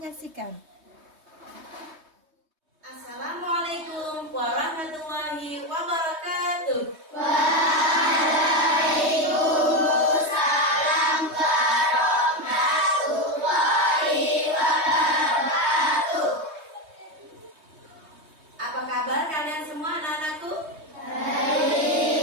Assalamualaikum warahmatullahi wabarakatuh. Waalaikumsalam warahmatullahi wabarakatuh. Apa kabar kalian semua anak-anakku?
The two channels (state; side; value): late; left; 3.2 ms